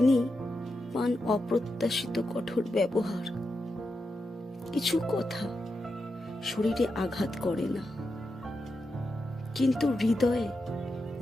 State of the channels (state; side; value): normal; both; correlation 0.87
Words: পান অপ্রত্যাশিত কঠোর ব্যবহার। কিছু কথা শরীরে আঘাত করে না, কিন্তু হৃদয়ে